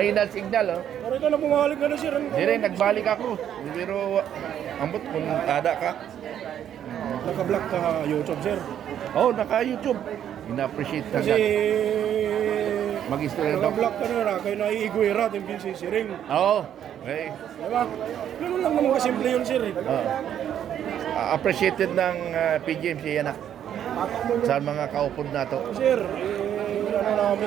signal oh. Pero ikaw na bumalik ka na sir. Diri, nagbalik ako. Pero ambot kung ada ka. Naka-vlog ka YouTube sir. Oh, naka-YouTube. Ina-appreciate ka Kasi mag-istorya daw. naka-vlog ka na kayo naiigwera at yung siring. Oo. Okay. Diba? Ganun lang naman kasimple yun sir. Appreciated ng PGMC yan na. Sa mga kaupod na to. Sir, ano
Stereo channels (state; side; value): quieter; left; 10.0 dB